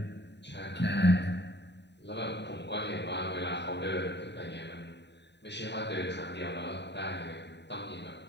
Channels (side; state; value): right; late; 0.50 ms